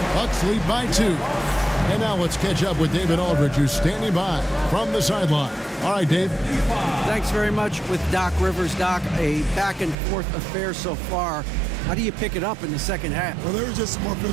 Bucks lead by 2. And now let's catch up with David Aldridge, who's standing by from the sideline. All right, Dave. Thanks very much with Doc Rivers. Doc, a back-and-forth affair so far. How do you pick it up in the second half? Well, they were just a more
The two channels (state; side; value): drops out; left; at 10.0 s